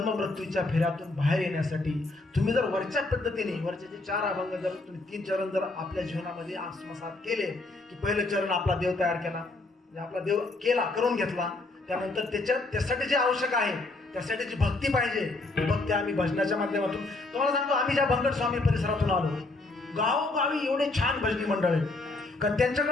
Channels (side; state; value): right; quieter; 3.1 dB